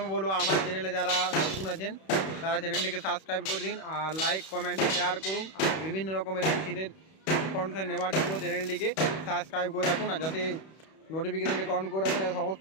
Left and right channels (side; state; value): right; late; 31 ms